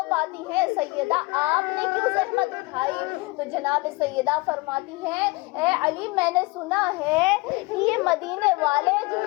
پاتی ہیں، سیدہ آپ نے کیوں زحمت اٹھائی؟ تو جناب سیدہ فرماتی ہیں، اے علی میں نے سنا ہے کہ یہ مدینے والے جو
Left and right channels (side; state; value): right; quieter; 23.9 dB